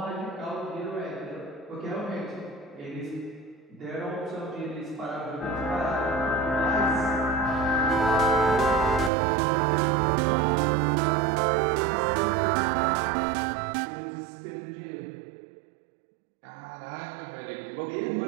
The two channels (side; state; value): left; drops out; at 9.1 s